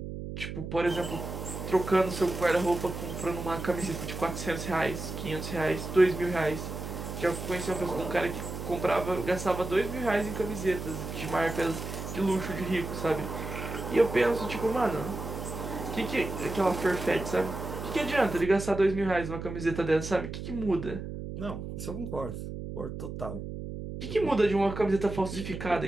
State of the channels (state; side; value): noise; right; hum, 7 dB below the sound